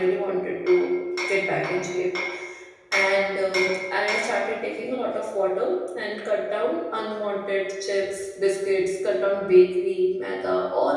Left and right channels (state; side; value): identical; both; correlation 1.00